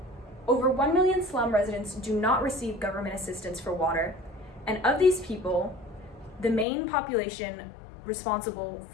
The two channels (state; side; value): drops out; right; at 6.7 s